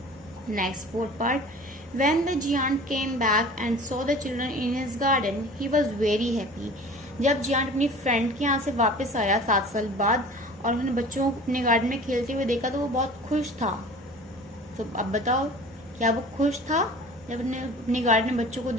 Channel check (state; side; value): normal; both; correlation 0.42